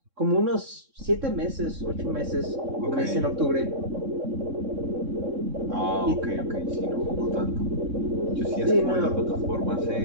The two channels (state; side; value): late; left; 3.6 ms